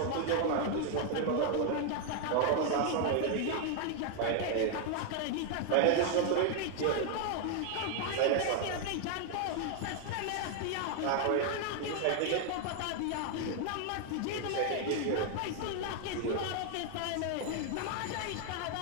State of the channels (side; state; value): both; different; correlation 0.00